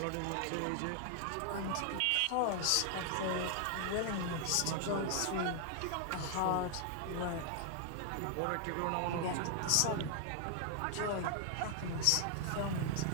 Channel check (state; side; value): different; both; correlation 0.00